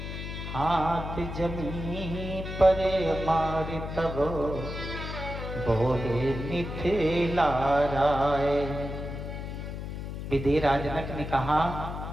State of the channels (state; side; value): noise; left; hum, 7 dB below the sound